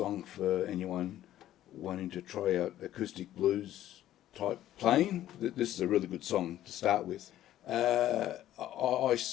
for anyone wanting to try out acoustic blues type playing. This is a really good song to start with. I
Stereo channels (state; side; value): quieter; right; 13.0 dB